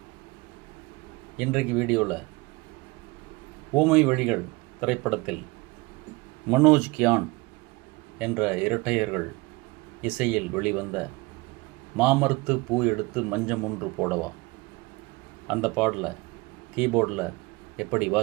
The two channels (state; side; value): quieter; left; 24.2 dB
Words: இன்றைக்கு வீடியோவில் ஊமை வழிகள் திரைப்படத்தில் மனோஜ் கியான் என்ற இரட்டையர்கள் இசையில் வெளிவந்த மாமரத்து பூ எடுத்து மஞ்சம் ஒன்று போடவா அந்த பாடலை கீபோர்டில் எப்படி